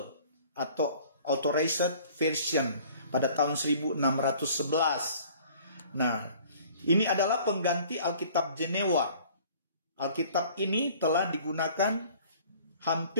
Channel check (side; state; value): both; inverted; correlation -0.52